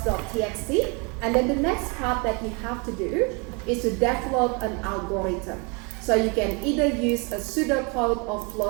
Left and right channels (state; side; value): quieter; left; 32.0 dB